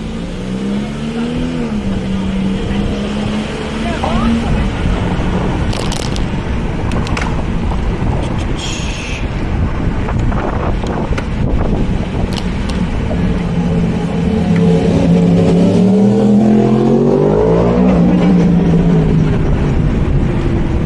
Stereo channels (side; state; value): both; identical; correlation 1.00